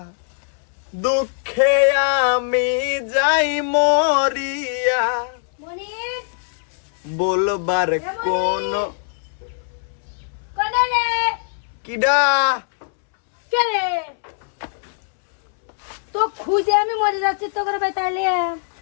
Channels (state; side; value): silent; right; 65 dB below the other